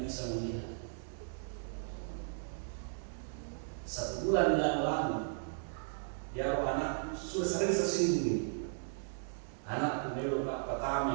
bisa melihat. Satu bulan yang lalu, ya anak sudah sering tersinggung. Anak pemilu Pak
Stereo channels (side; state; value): left; silent; digital silence